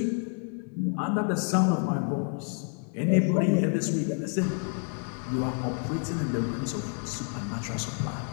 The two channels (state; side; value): quieter; right; 36.0 dB